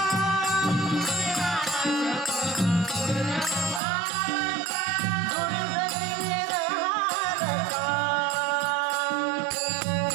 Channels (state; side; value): drops out; left; at 3.8 s